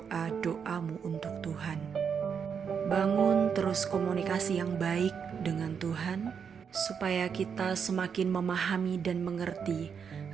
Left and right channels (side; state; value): left; quieter; 6.8 dB